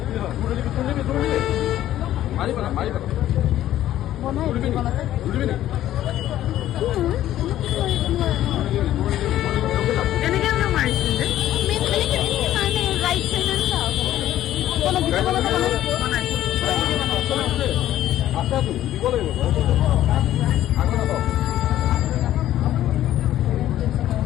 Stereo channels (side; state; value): right; quieter; 13.0 dB